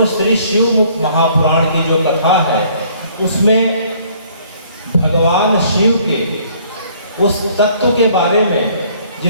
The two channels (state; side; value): inverted; both; correlation -0.60